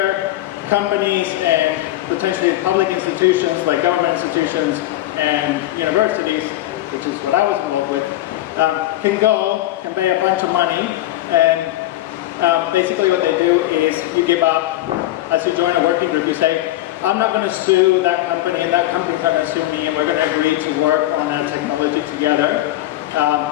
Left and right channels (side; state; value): right; quieter; 15.3 dB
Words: companies and potentially public institutions, like government institutions and universities, which is what I was involved with, can pay a bunch of money, and basically what they do is you give up, as you join a working group, you say, I'm not going to sue that company, and that company's not going to sue me, and we're going to agree to work on that technology together.